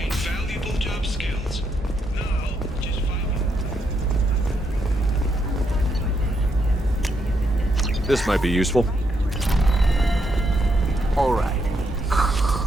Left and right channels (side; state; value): both; normal; correlation 0.79